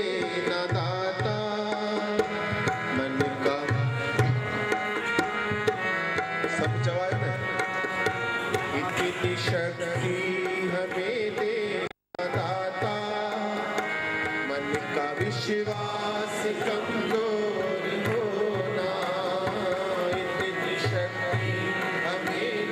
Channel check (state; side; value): identical; both; correlation 1.00